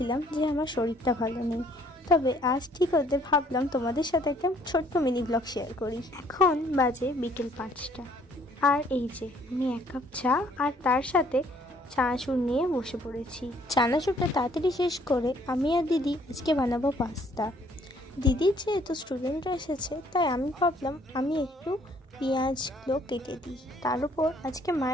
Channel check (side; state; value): both; normal; correlation 0.62